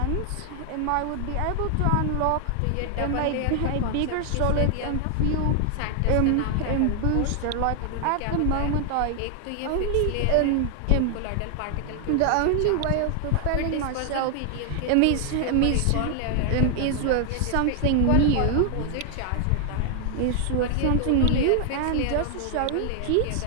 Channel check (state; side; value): different; both; correlation 0.00